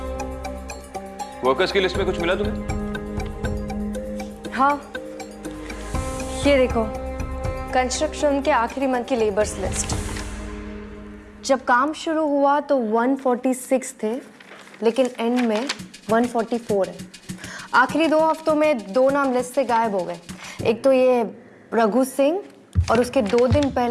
वर्कर्स की लिस्ट में कुछ मिला तुम्हें? हाँ, ये देखो, कंस्ट्रक्शन के आखिरी मंथ की लेबर्स लिस्ट। जब काम शुरू हुआ तो 146 थे, लेकिन एंड में 144 है। आखिरी 2 हफ्तों में 2 नाम लिस्ट से गायब हो गए। एक तो ये रघु सिंह और उसके 2 दिन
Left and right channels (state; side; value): identical; both; correlation 1.00